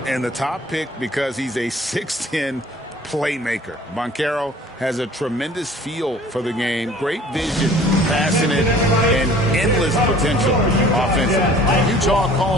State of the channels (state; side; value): normal; both; correlation 0.50